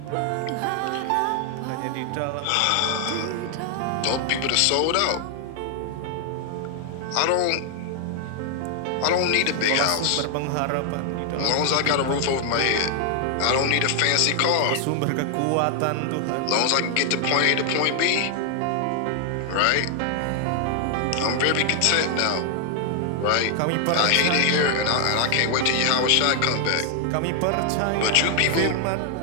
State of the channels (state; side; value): different; both; correlation 0.00